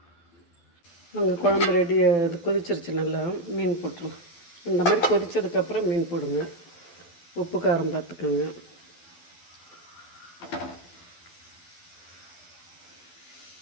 அங்கே குழம்பு ரெடி, அது கொதிச்சிருச்சு. நல்லா மீன் போட்டுருங்க. இந்த மாதிரி கொதித்ததுக்கப்புறம் மீன் போடுங்க. உப்பு காரம் பார்த்துக்கோங்க.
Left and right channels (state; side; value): late; right; 12 ms